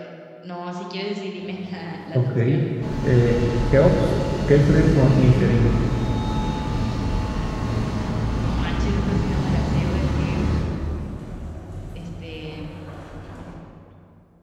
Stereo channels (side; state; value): both; identical; correlation 1.00